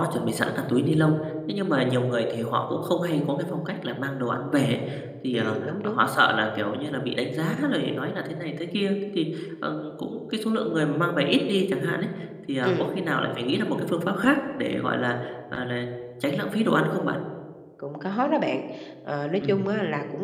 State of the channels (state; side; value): identical; both; correlation 1.00